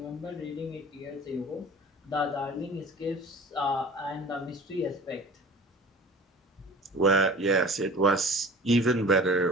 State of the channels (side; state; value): both; normal; correlation 0.42